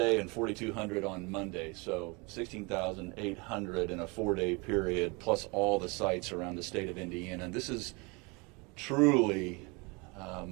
and 4,200 on Monday. So 16,800 in a 4-day period, plus all the sites around the state of Indiana. And this is truly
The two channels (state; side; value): quieter; left; 28.5 dB